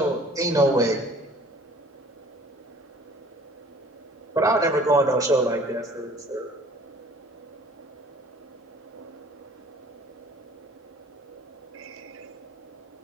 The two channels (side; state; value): both; normal; correlation 0.51